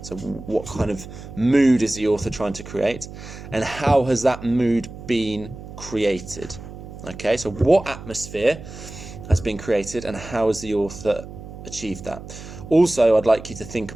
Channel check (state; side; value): noise; right; hum, 13 dB below the sound